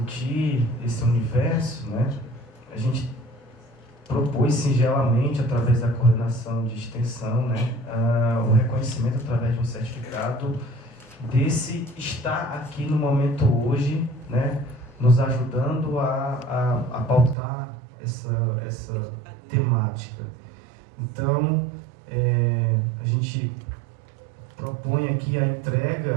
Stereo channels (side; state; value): left; drops out; at 17.4 s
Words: esse universo, né, a gente propôs singelamente, através da coordenação de extensão, né, o reconhecimento através de um certificado desse estar aqui no momento hoje, né, nos ajudando a pautar essa temática. Então, a gente propõe aqui a